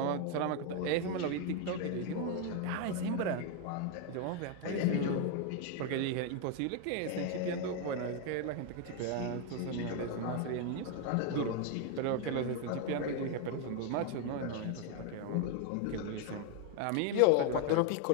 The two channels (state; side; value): different; both; correlation 0.01